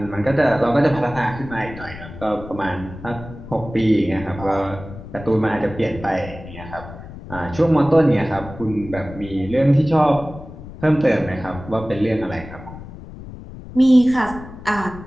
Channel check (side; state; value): left; noise; rumble, 14 dB below the sound